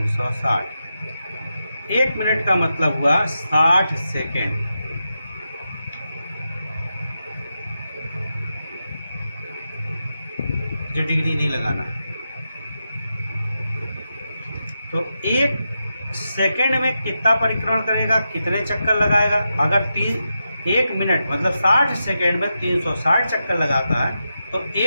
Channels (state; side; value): inverted; both; correlation -0.88